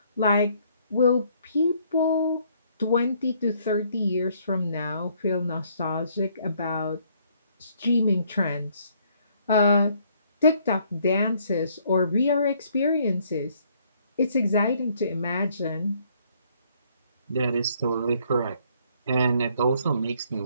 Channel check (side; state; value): both; inverted; correlation -0.66